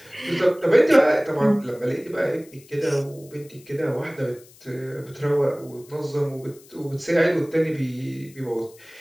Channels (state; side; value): noise; left; hiss, 25 dB below the sound